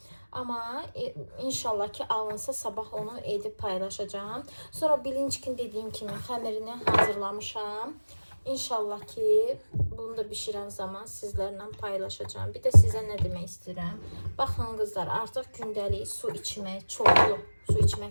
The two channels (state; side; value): inverted; both; correlation -1.00